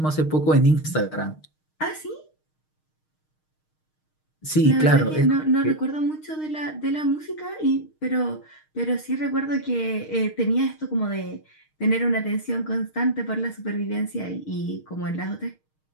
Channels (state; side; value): late; right; 6.5 ms